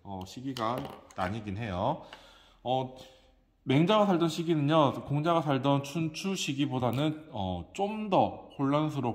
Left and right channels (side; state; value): both; identical; correlation 1.00